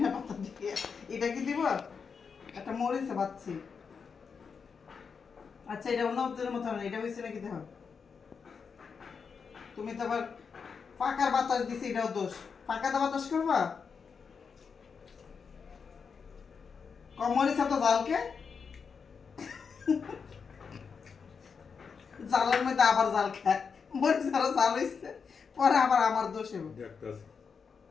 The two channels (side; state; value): right; quieter; 5.8 dB